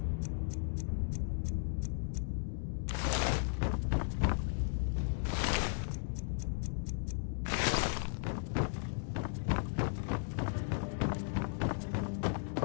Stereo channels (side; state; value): right; silent; digital silence